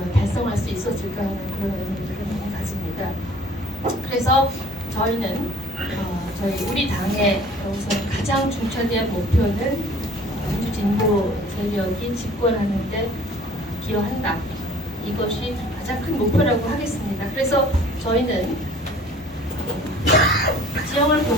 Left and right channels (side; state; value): both; normal; correlation 0.51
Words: 달성할 수 있었을까 하는 그런 의미를 가집니다. 그래서 저희는 저희 우리 당의 우선 가장 중차대한 목표는 민주진보 세력이 집권하는데 기여한다. 이것이 가장 큰 목표라고 하겠습니다. 그래서 저희는 지형을